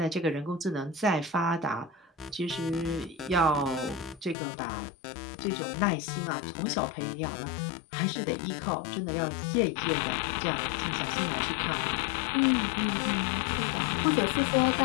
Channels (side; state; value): right; drops out; at 4.4 s